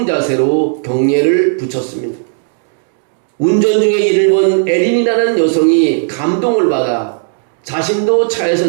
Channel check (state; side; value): silent; left; digital silence